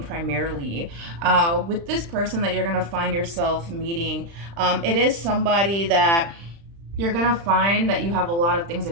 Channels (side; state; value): left; late; 35 ms